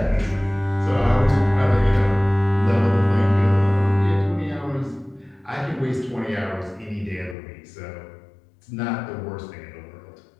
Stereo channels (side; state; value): right; drops out; at 7.4 s